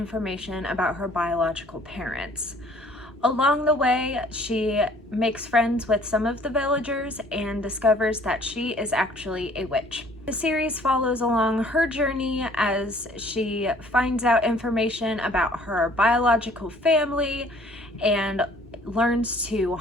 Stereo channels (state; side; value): normal; both; correlation 0.56